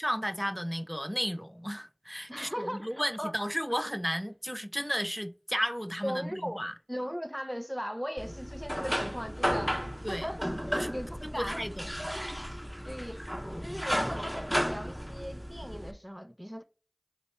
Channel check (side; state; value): both; identical; correlation 1.00